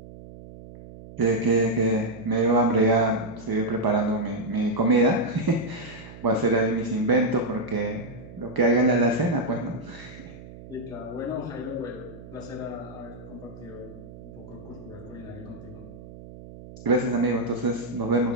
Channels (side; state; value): right; noise; hum, 16 dB below the sound